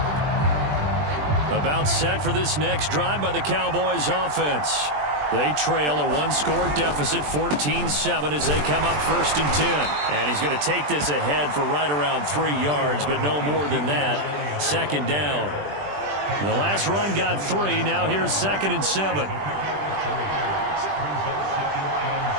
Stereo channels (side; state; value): left; late; 20 ms